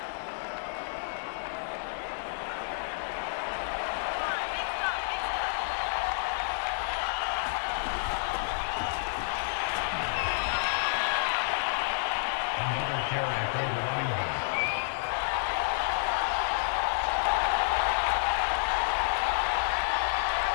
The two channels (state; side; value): silent; right; digital silence